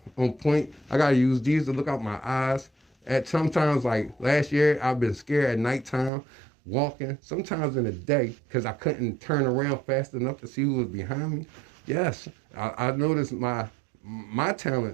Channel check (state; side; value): drops out; left; at 6.1 s